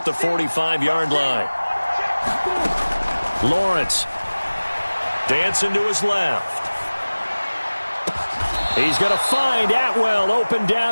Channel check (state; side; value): inverted; both; correlation -1.00